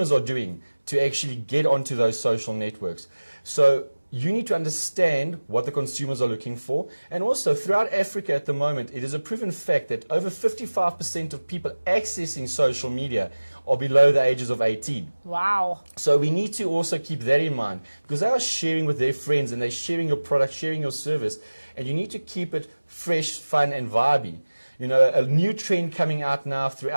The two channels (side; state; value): both; inverted; correlation -1.00